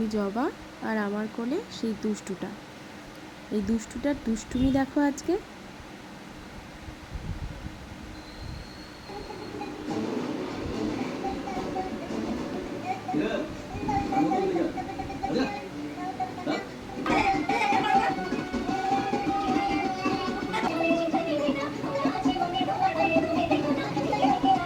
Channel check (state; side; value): identical; both; correlation 1.00